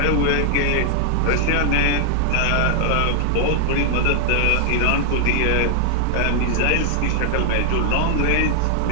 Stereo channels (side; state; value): both; different; correlation 0.00